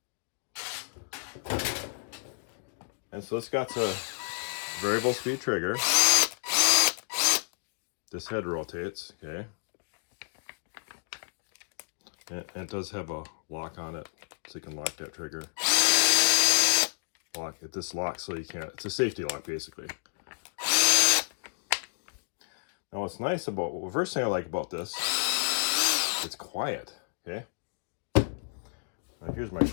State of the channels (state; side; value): silent; right; digital silence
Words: And so it's got the variable speed trigger. This head rotates, okay? And it does have a lock on it, so you can lock that trigger. Lock it. This locks so you can't. It's a safety lock, basically. Now, what's nice about, well, the first thing I like about this, it's quiet, okay? Now, here's my